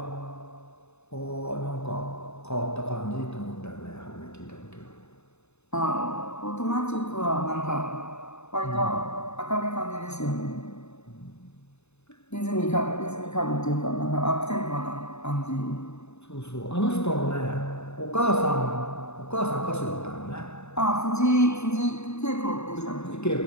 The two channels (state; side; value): late; right; 0.81 ms